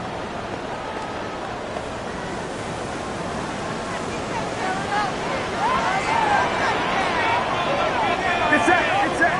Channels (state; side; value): identical; both; correlation 1.00